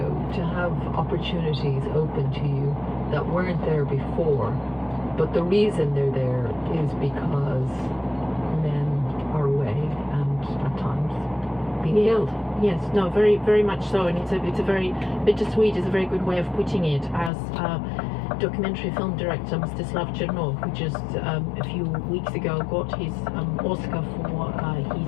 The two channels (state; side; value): drops out; right; at 17.3 s